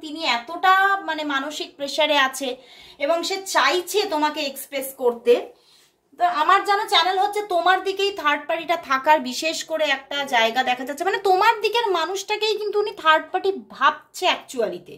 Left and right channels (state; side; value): identical; both; correlation 1.00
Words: তিনি এতটা মানে মানসিক প্রেসারে আছে এবং সে চাইছে তোমাকে এক্সপ্রেস করতে। তো আমার জানা চ্যানেল হচ্ছে তোমার দিকেই থার্ড পার্টিটা থাকার বিশেষ করে একটা জায়গা দেখা যাচ্ছে, মানে তোমার দিকের মানুষটাকেই কিন্তু উনি থার্ড পার্টি ভাবছে অ্যাকচুয়ালিতে।